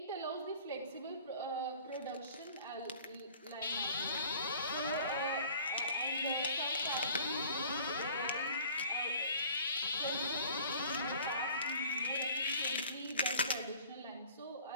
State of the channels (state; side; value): inverted; both; correlation -0.49